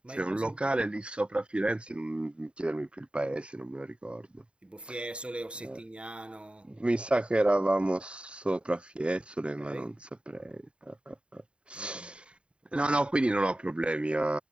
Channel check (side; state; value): left; late; 0.055 ms